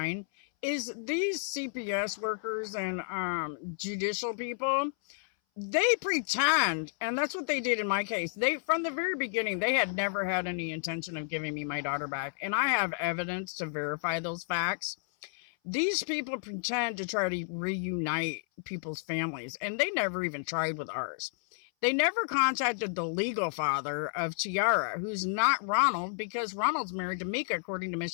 is these CPS workers and judicial people, they pretend, and that's what they did in my case. They, from the very beginning, they had never had any intention of giving me my daughter back, and I have evidence to verify those facts. These people pretend to try to reunite people's families, and they never even tried with ours. They never contacted the legal father of Tiara, who's not Ronald, because Ronald's married to Mika according to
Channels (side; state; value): right; silent; 57 dB below the other